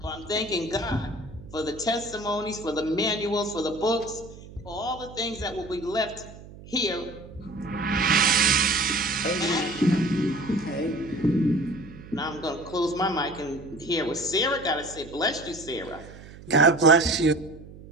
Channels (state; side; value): noise; right; hum, 17 dB below the sound